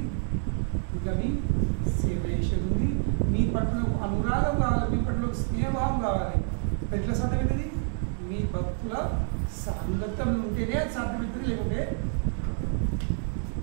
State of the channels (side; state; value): left; silent; 55 dB below the other